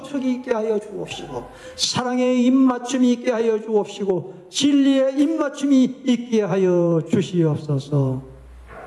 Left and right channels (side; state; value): both; identical; correlation 1.00